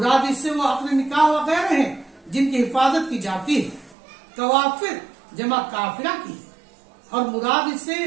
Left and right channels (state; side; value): drops out; left; at 4.0 s